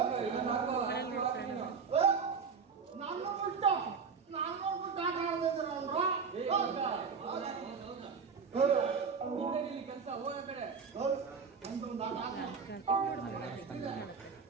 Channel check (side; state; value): left; quieter; 5.7 dB